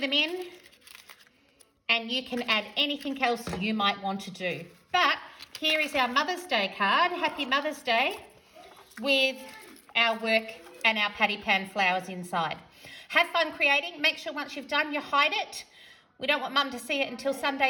in. And you can add anything else you might want to do. But here is our Mother's Day card. Happy Mother's Day, with our work and our patty pan flowers inside. Have fun creating. Make sure once you've done, you hide it. We don't want Mum to see it until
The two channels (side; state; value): both; identical; correlation 1.00